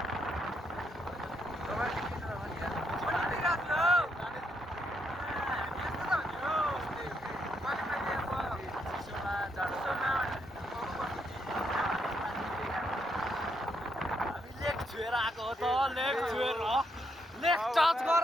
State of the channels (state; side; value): normal; both; correlation 0.78